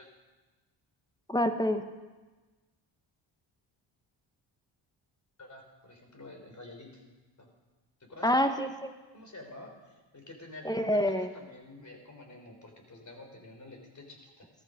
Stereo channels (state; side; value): normal; both; correlation 0.59